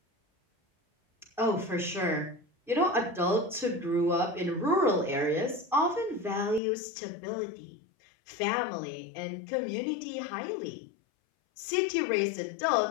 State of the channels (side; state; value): right; drops out; at 6.6 s